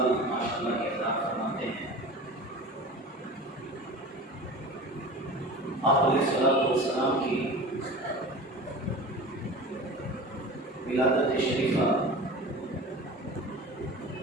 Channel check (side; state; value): both; normal; correlation 0.35